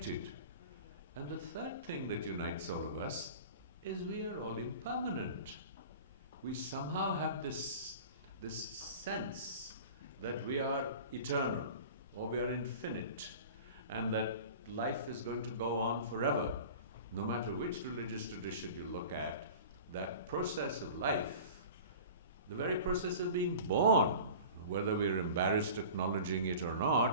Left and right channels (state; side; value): inverted; both; correlation -0.39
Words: And the third thing that unites all of us is we are all impermanent. We somehow have this sense that we are eternal. or we are infinite, and that life is going to go on forever. No matter which religious tradition you look at, that process of life, the very process of being born, whether we're embarrassed acknowledging it or